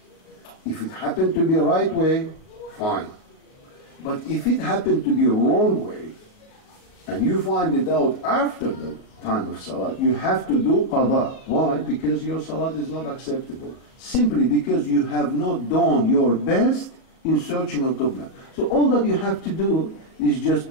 If it happened to be right way, fine. But if it happened to be wrong way, and you find it out after the time of Salat, you have to do qada. Why? Because your Salat is not acceptable. Simply because you have not done your best in searching on Qibla. So all that you have to do is just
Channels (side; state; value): right; late; 38 ms